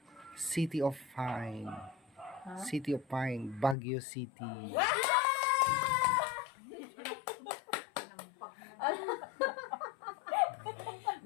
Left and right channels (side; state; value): right; drops out; at 3.8 s